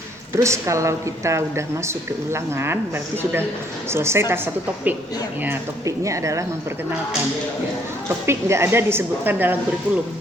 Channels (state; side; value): normal; both; correlation 0.65